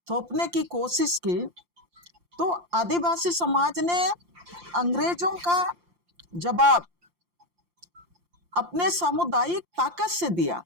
थोपने की कोशिश की, तो आदिवासी समाज ने अंग्रेजों का जवाब अपने सामुदायिक ताकत से दिया,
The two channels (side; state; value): left; late; 5.7 ms